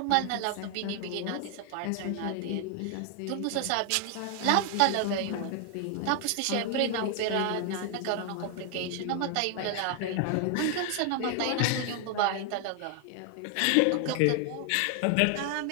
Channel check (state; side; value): different; both; correlation 0.00